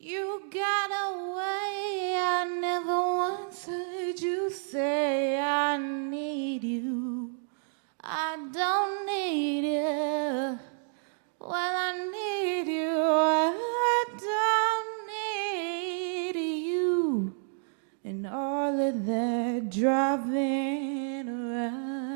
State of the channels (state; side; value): silent; left; digital silence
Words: got away, I never once heard you say I need you. I don't need you. Well, I need you. I don't need you. And all of that driving